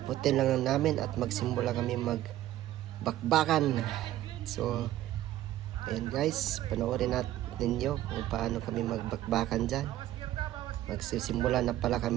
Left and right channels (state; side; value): quieter; left; 13.9 dB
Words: lang namin at magsimula kami magbakbakan. So ayan guys, panoorin natin ninyo kung paano kami magbakbakan dyan. Magsisimula na pala